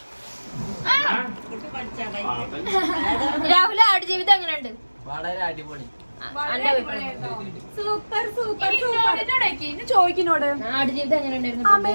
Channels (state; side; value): inverted; both; correlation -1.00